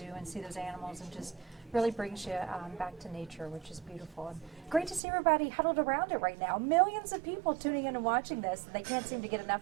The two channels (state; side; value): drops out; left; at 5.0 s